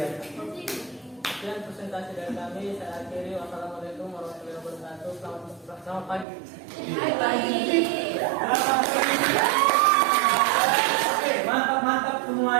Sekian presentasi dari kami. Saya akhiri. Wassalamualaikum warahmatullahi wabarakatuh. Selamat pagi. Oke, mantap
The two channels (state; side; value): drops out; left; at 6.2 s